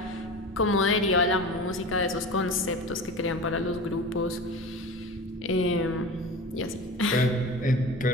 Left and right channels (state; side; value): normal; both; correlation 0.32